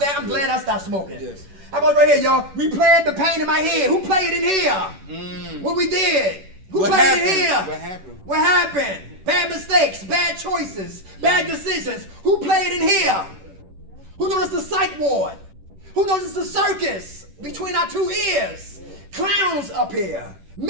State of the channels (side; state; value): left; late; 11 ms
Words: glad I stopped smoking. Yes. How about right here, y'all? We played the pain in my head. Who played in here? What we did? Who What played happened? in here? What happened? What happened? Bad mistakes, bad choices, bad decisions. Who played in here? Who noticed the psych ward? Who noticed the circus between our two ears? Clowns up here,